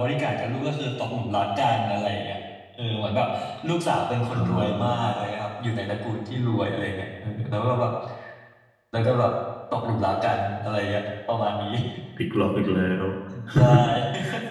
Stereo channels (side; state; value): both; identical; correlation 1.00